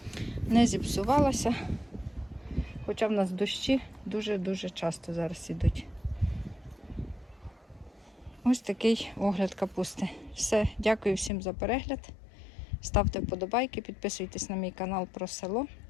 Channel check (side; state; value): right; drops out; at 11.3 s